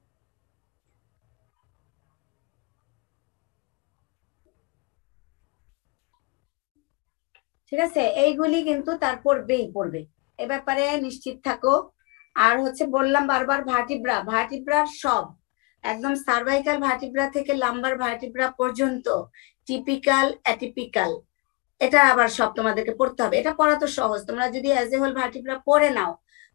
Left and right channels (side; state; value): right; quieter; 28.5 dB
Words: ঠিক আছে। এইগুলি কিন্তু তার পড়বে, এ ব্যাপারে নিশ্চিত থাকো। আর হচ্ছে বললাম বারবার, ভার্টিব্রার সব একদম সার্ভাইকাল ভার্টিব্রা থেকে লাম্বার ভার্টিব্রা পর্যন্ত টিপিক্যাল, অ্যাটিপিক্যাল, এটা আবার সব তোমাদেরকে পড়তে হবে। এটা পড়া তো সহজ, তোমরা যদি অ্যাজ এ হোল ভার্টিব্রা পড়ে নাও,